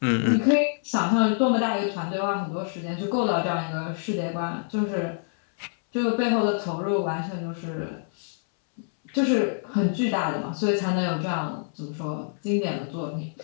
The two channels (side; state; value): right; silent; 61 dB below the other